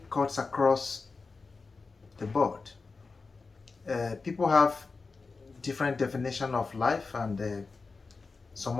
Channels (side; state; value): right; quieter; 4.2 dB